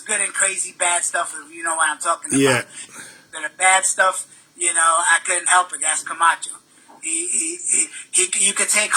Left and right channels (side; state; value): both; identical; correlation 1.00